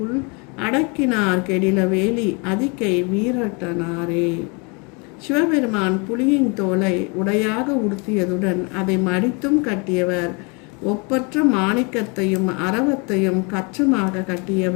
அடக்கினார் கெடில வேலி அதிகை வீரட்டனாரே. சிவபெருமான் புலியின் தோலை உடையாக உடுத்தியதுடன் அதை மடித்தும் கட்டியவர். ஒப்பற்ற மாணிக்கத்தையும் அரவத்தையும் கச்சமாக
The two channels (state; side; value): quieter; right; 32.0 dB